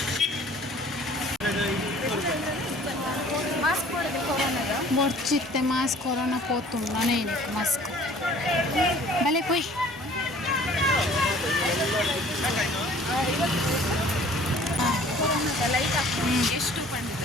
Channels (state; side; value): normal; both; correlation 0.51